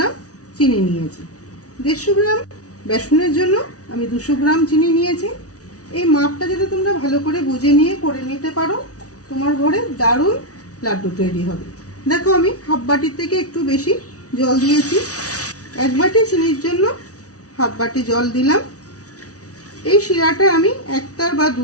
চিনি নিয়েছি। 150 গ্রাম বেসনের জন্য আমি 200 গ্রাম চিনি নিয়েছি। এই মাপটা যদি তোমরা ভালো করে বুঝে নিয়ে করে নিতে পারো তোমার ঘরে দারুণ লাড্ডু তৈরি হবে। দেখো আমি হাফ বাটির থেকে একটু বেশি জল দিয়েছি। 1 বাটি চিনির জন্য হাফ বাটি জল দিলাম। এই শিরাটা আমি 1 তার বা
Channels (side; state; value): right; late; 0.67 ms